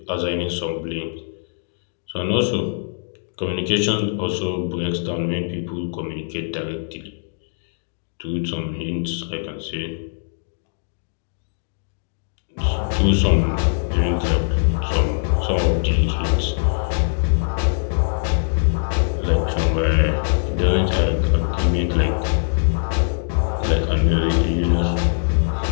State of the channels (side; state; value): right; silent; digital silence